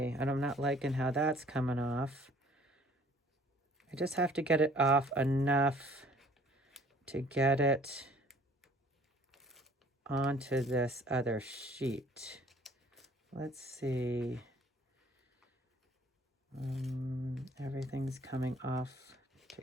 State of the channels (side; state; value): both; normal; correlation 0.55